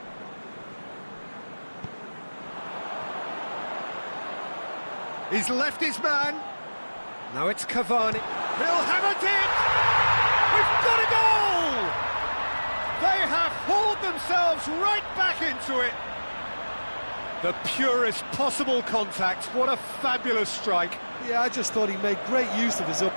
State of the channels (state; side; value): inverted; both; correlation -1.00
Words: He's left his man. Now it's Cavani. He'll have it in! We've got a goal! They have hauled themselves right back into it. The purest possible contact. What a fabulous strike. Yeah, I just thought he made great use of his